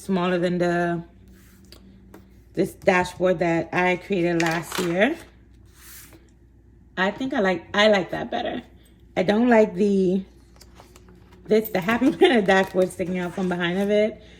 than this dashboard that I created last year. I think I like that better. I don't like the Happy Planner dashboard sticking out from behind of it.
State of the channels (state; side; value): identical; both; correlation 1.00